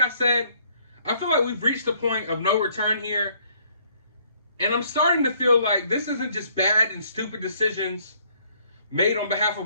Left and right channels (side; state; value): both; inverted; correlation -0.64